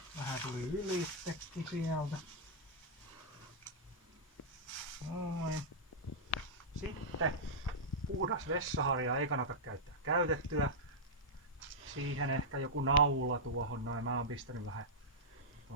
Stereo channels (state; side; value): normal; both; correlation -0.09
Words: vähän tuli ylitsekin sieltä. Noin. Sitten puhdas vessaharja ei kannata käyttää käytettyä. Siihen ehkä joku naula tuohon noin. Mä oon pistänyt vähän